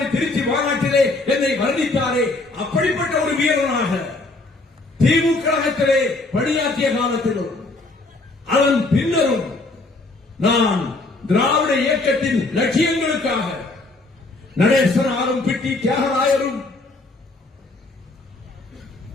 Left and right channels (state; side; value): quieter; right; 3.1 dB